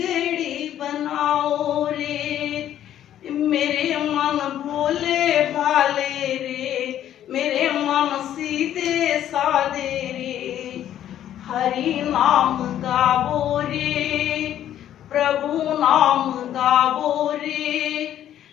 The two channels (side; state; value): right; quieter; 11.3 dB